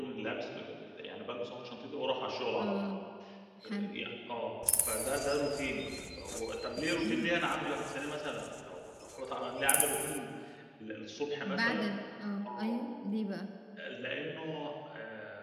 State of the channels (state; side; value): identical; both; correlation 1.00